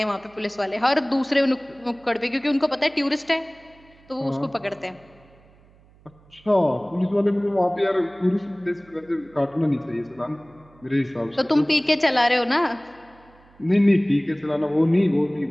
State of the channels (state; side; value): noise; right; hum, 28 dB below the sound